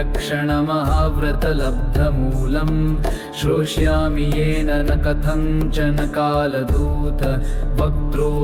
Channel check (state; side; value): identical; both; correlation 1.00